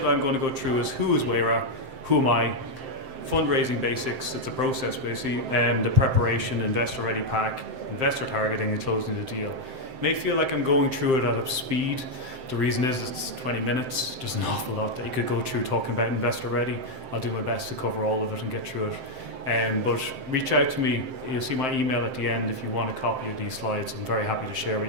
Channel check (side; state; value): left; late; 7.7 ms